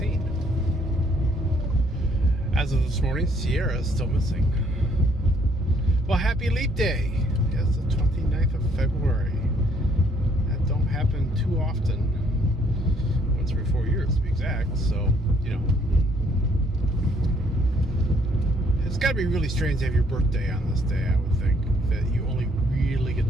As of this morning, Sierra is still missing. Well, happy leap day. Yes, the 29th of February. That don't happen too often. Once every 4 years to be exact, so, it's got to be really strange to have your birthday on this day, I would think. That you only really get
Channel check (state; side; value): normal; both; correlation 0.65